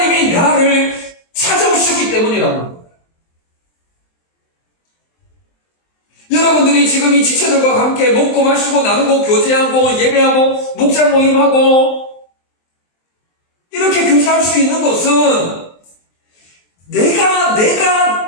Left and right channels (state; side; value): late; right; 23 ms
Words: 나를 찾아오셨기 때문이라는 거예요. 여러분들이 지금 이 지체들과 함께 먹고 마시고 나누고 교제하고 예배하고 목자 모임하고 이렇게 교제할 수 있는 것은 내가